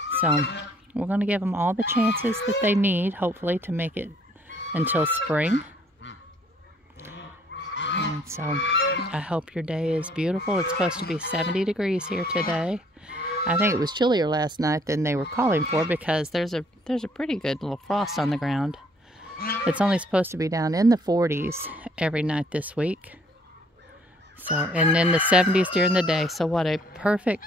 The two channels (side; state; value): both; normal; correlation 0.63